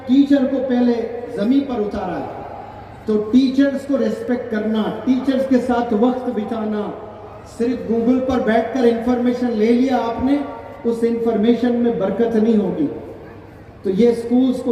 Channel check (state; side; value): identical; both; correlation 1.00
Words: ٹیچر کو پہلے زمین پر اتارا ہے. تو ٹیچرز کو ریسپیکٹ کرنا, ٹیچرز کے ساتھ وقت بتانا. صرف گوگل پر بیٹھ کر انفارمیشن لے لیا آپ نے, اس انفارمیشن میں برکت نہیں ہوگی. تو یہ سکولز